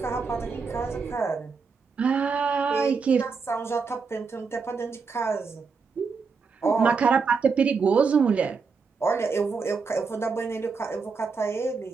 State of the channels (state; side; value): quieter; left; 5.0 dB